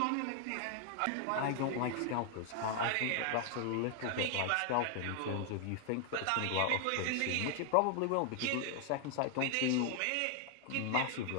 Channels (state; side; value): different; both; correlation 0.00